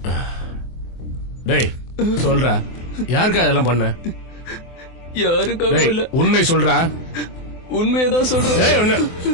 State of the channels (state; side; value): late; right; 24 ms